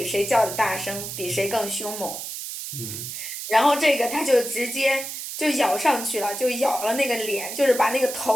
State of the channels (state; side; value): noise; right; hiss, 7 dB below the sound